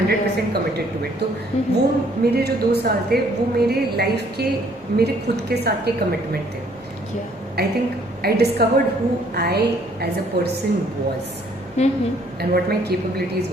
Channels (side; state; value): both; normal; correlation 0.63